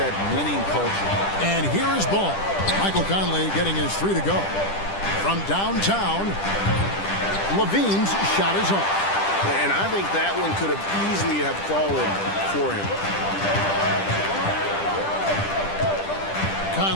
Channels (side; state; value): right; late; 10 ms